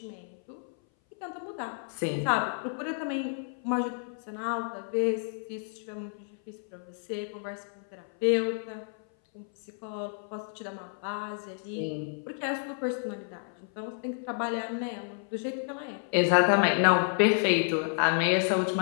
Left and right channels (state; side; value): silent; right; 57 dB below the other